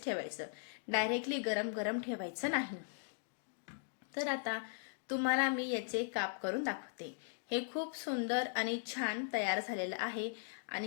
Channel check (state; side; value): silent; right; digital silence